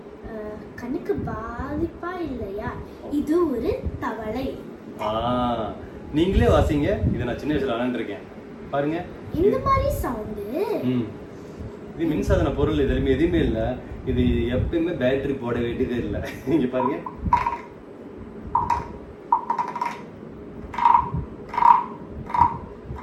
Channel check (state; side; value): identical; both; correlation 1.00